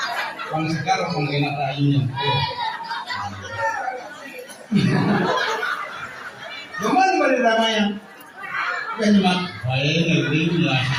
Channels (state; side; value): identical; both; correlation 1.00